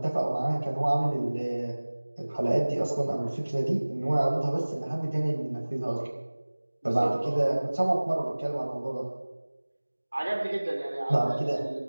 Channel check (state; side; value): inverted; both; correlation -1.00